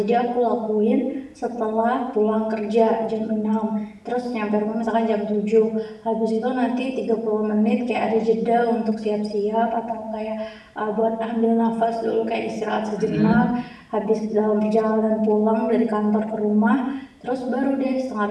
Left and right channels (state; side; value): identical; both; correlation 1.00